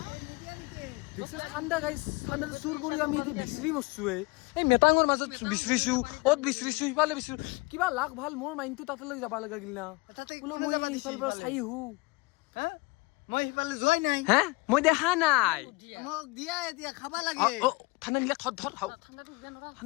দেখছ ঠাণ্ডা গাইছ ঠাণ্ডা চুৰ কৰি আমি এতিয়া বিচাৰি মৰছো এই মেটাঙৰ মাজত বিচাৰিছো অত বিচাৰিছো সিফালে বিচাৰিছো কিবা লাগ ভাল মোৰ মাইণ্ডটো তাতে লৈ যাব লগা গিল না তাতে বোলো কোনে মই যাবা দিছিল সিফালৰ পৰা চাই আহো হা মই সিফালে যোৱাই নাই হা মই দেখা নাই মোক দিয়া এতিয়া খাবা লাগে ঠাণ্ডা নিলে ধৰ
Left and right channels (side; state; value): right; quieter; 25.7 dB